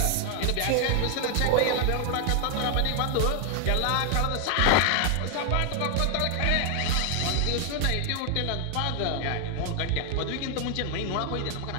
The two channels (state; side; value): different; both; correlation 0.00